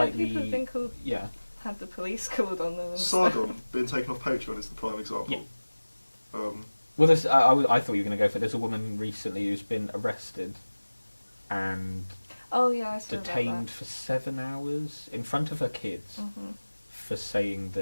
people have been called, yeah. had the police called on them. And stuff. Sargon being taken off Patreon is the prime example. Yeah. Um, Well, there's, I thought you were going to go for. There's a woman recently who's been arrested and Oh yeah, I saw detained for 7 hours in front of her kids That. for saying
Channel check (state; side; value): inverted; both; correlation -1.00